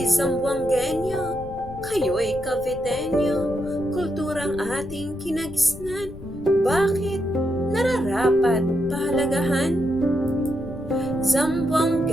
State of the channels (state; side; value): noise; left; rumble, 15 dB below the sound